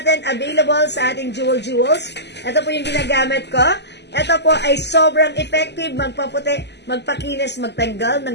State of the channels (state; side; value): late; right; 0.50 ms